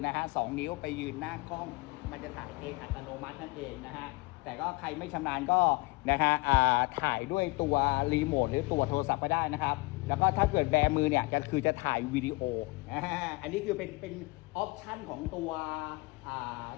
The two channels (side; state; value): right; quieter; 25.1 dB